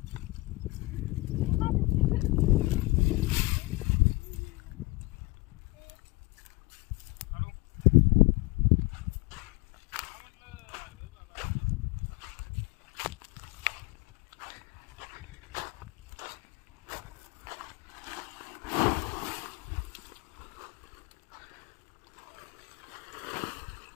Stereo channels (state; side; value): quieter; right; 23.4 dB